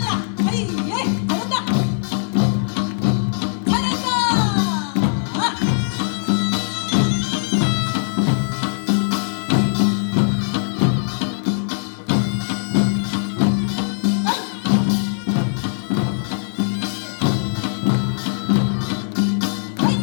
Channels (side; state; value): right; silent; 65 dB below the other